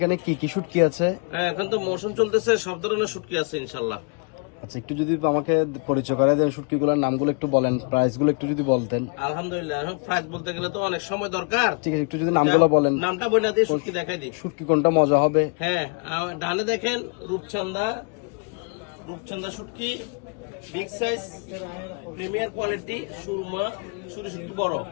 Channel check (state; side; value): quieter; right; 34.9 dB